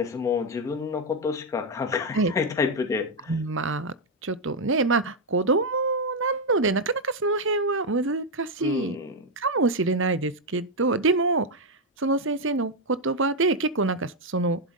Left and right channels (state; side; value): normal; both; correlation 0.02